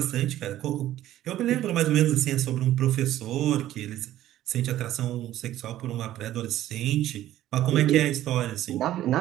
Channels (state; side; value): quieter; left; 13.5 dB